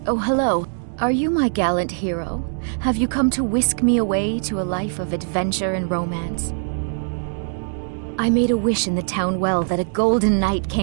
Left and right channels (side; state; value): left; silent; 64 dB below the other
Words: Oh, hello. Are you my gallant hero? Have you come to whisk me away to a life of adventure and romance? I made a wish in the town well that a golden knight